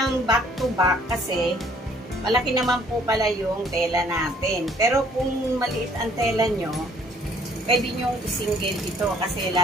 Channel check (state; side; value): normal; both; correlation 0.60